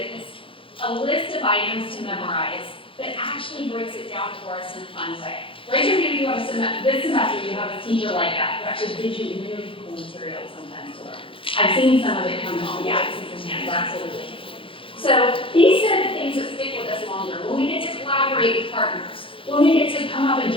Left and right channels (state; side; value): late; right; 0.25 ms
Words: a list of items to memorize, but actually breaks it down for us in a fun way. Raise your hand if you have this semester you have a teacher like that who actually gives you really cool material sometimes to learn. I've seen some of it come home. Yeah, I see some hands, absolutely. So these are the things that stick with us longer. When we get to collaborate with partners, when we get to come up and